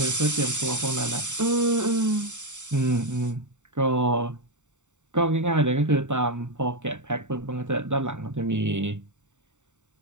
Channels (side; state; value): left; late; 0.84 ms